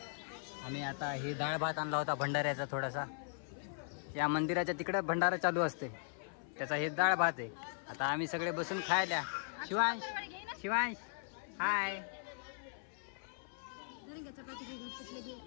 आम्ही आता हे डाळ भात आणला होता भंडाऱ्याचा थोडासा. या मंदिराच्या तिकडे भंडारा चालू असते त्याचा हे डाळ भात आहे. आता आम्ही सगळे बसून खायला. शिवांश शिवांश हाय.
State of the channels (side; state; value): right; silent; 52 dB below the other